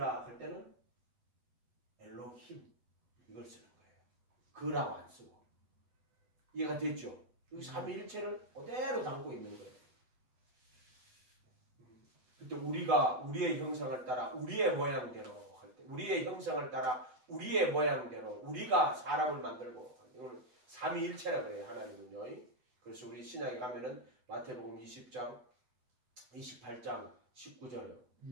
할 때는 엘로힘 이걸 쓰는 거예요. 그라고 안 쓰고. 이해가 됐죠? 여기 삼위일체를 그대로 담고 있는 거예요. 그때 우리가 우리의 형상을 따라 우리의 모양대로 할 때, 우리의 형상을 따라 우리의 모양대로 우리가 사람을 만들고, 이거는 삼위일체라고 그래요. 하나님은요. 그래서 우리 신약에 가면은 마태복음 20장 28장 19절에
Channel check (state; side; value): late; left; 8.0 ms